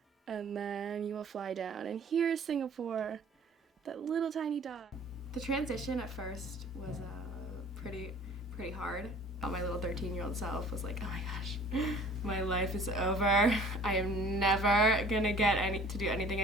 and then you will fly down. And here's Singapore, that little tiny dot. The transition at first was pretty hard. My little 13-year-old self was like, oh my gosh, my life is over. I am never gonna get to do anything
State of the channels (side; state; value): both; normal; correlation 0.50